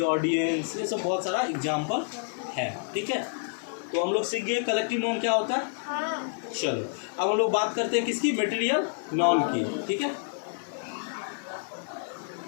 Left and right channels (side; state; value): right; silent; digital silence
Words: audience, ये सब बहुत सारा एग्जाम्पल है। ठीक है, तो हम लोग सीख गए कलेक्टिव नाउन क्या होता है। चलो, अब हम लोग बात करते हैं किसकी? मटेरियल नाउन की। ठीक है,